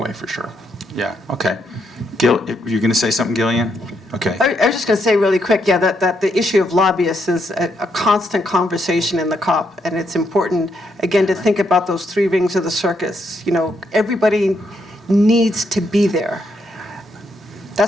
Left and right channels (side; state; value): both; normal; correlation 0.77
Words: for sure. Yeah, okay. Gil, you're going to say something, Gillian? Okay. I was just going to say really quick, that the issue of lobbyists is a constant conversation in the COP, and it's important, again, to think about those 3 rings of the circus. Everybody needs to be there.